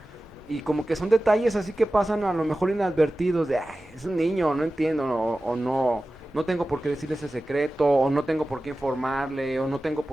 y como que son detalles así que pasan a lo mejor inadvertidos de, "Ay, es un niño, no entiendo, o no, no tengo por qué decirle ese secreto, o no tengo por qué informarle, o no tengo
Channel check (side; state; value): both; normal; correlation 0.95